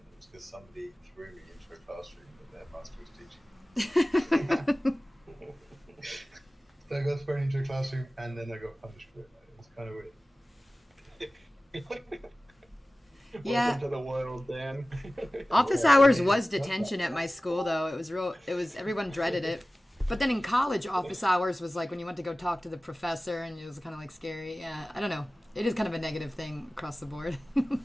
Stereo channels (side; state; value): both; normal; correlation 0.97